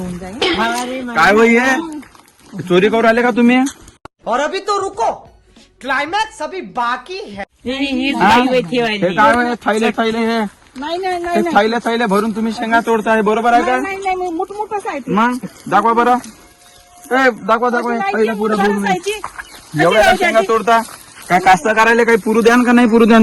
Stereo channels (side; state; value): both; identical; correlation 1.00